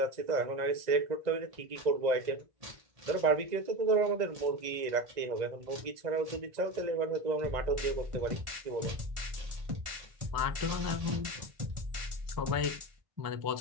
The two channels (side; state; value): left; late; 1.9 ms